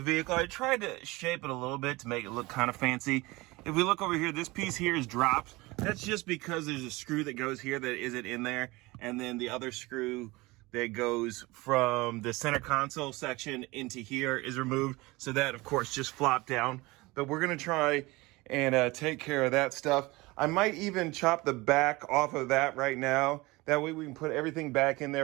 the vehicle. I tried to shape it a little bit to make it look kind of fancy. If we look over here, this piece here is dropped. That's just because there's a screw that goes here that isn't in there, and then the other screw that goes from the center console section into here is removed. So that, of course, just flopped down. But we're gonna try and take care of that stuff. I might even chop the back off of that right now. That way we can put everything back in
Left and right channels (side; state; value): left; quieter; 22.2 dB